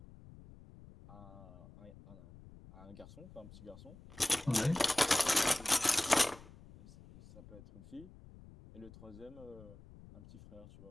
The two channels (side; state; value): left; noise; rumble, 19 dB below the sound